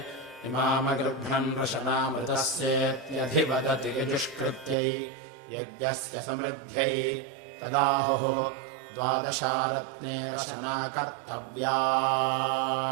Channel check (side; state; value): left; drops out; at 4.8 s